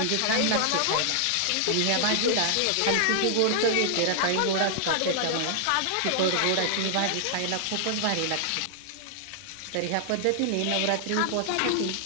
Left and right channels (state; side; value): different; both; correlation 0.00